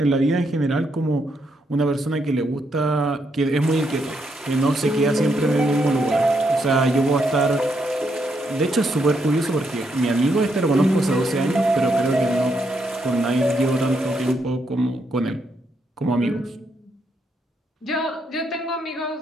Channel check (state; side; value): normal; both; correlation 0.78